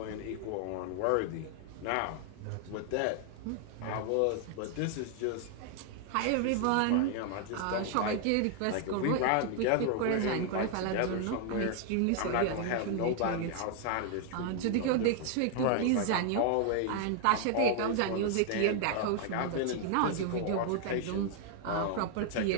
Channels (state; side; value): different; both; correlation 0.00